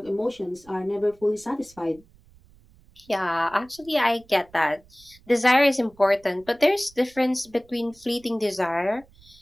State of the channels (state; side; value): noise; right; rumble, 28 dB below the sound